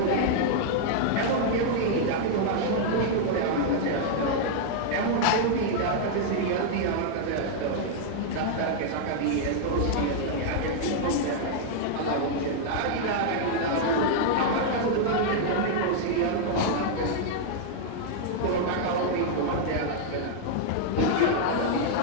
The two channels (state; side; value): different; both; correlation -0.01